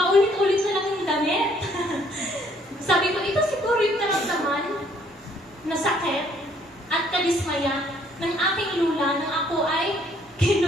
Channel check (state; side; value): normal; both; correlation 0.64